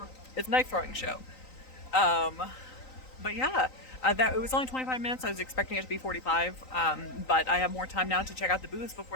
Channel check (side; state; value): right; late; 3.9 ms